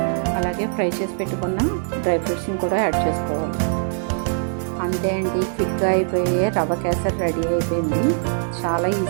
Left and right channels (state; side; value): silent; left; 61 dB below the other